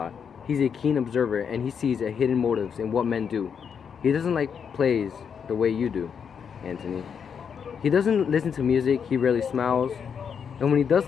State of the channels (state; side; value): quieter; right; 7.0 dB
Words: He's a keen observer, and he sees a hidden motives in what men do. He doesn't like plays the way you do, Antony. He doesn't listen to music, he rarely smiles, and when he does